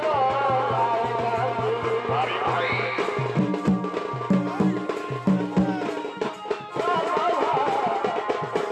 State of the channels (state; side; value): identical; both; correlation 1.00